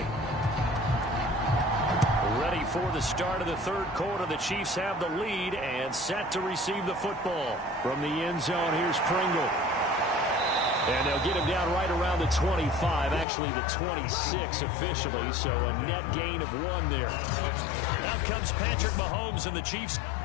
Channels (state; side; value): drops out; right; at 13.2 s